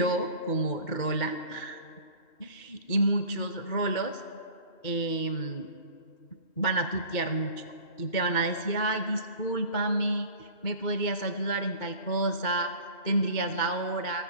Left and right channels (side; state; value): right; late; 2.2 ms